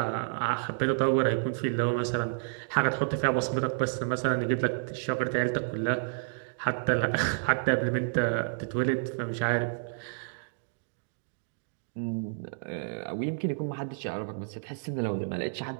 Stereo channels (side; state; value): left; silent; digital silence